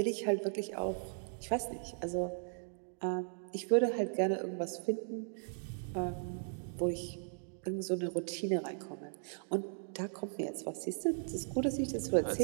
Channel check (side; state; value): left; silent; digital silence